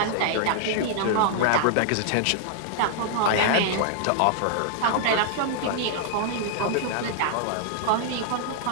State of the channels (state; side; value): different; both; correlation -0.01